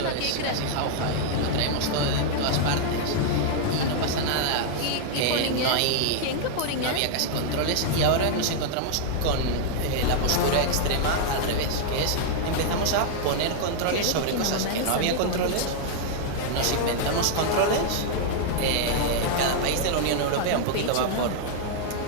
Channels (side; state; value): both; different; correlation -0.01